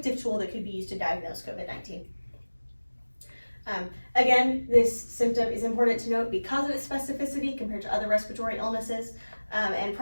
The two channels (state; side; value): inverted; both; correlation -1.00